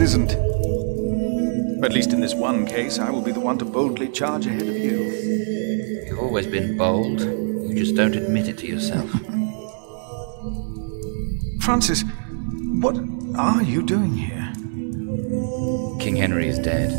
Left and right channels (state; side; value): silent; left; digital silence